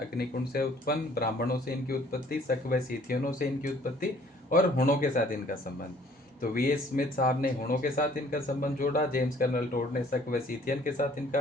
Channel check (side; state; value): both; normal; correlation 0.57